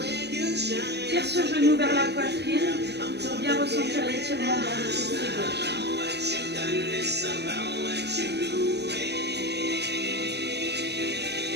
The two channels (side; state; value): left; late; 0.49 ms